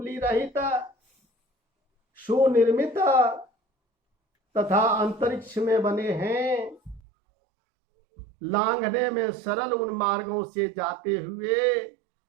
रहित, सुनिर्मित तथा अंतरिक्ष में बने हैं, लांघने में सरल उन मार्गों से जाते हुए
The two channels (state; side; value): drops out; left; at 7.0 s